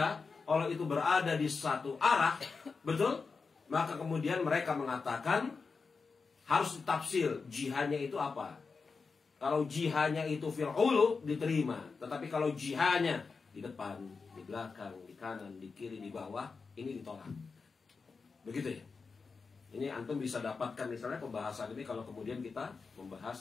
Allah itu berada di satu arah, betul? Maka kemudian mereka mengatakan harus ditafsir jihadnya itu apa. Kalau jihadnya itu fil ulu diterima, tetapi kalau jihadnya di depan, di belakang, di kanan, di kiri, di bawah, ini ditolak. Begitu ya. Ini antum bisa dapatkan misalnya pembahasan ini kalau kemudian kita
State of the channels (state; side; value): quieter; right; 4.7 dB